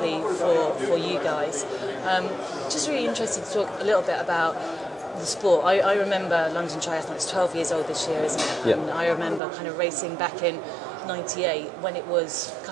for you guys. Just really interested to talk a little bit about the sport. I remember London Triathlon. It's 12 years old this year, isn't it? Yep. And I remember kind of racing back in '98 when it was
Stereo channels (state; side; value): drops out; left; at 9.4 s